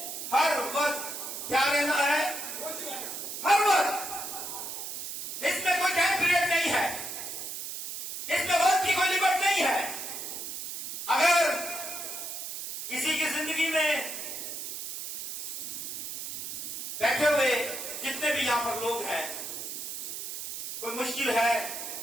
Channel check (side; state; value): right; noise; hiss, 6 dB below the sound